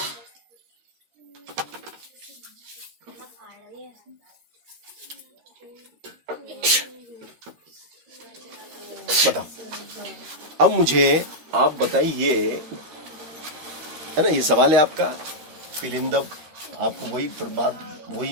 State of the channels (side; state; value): left; late; 13 ms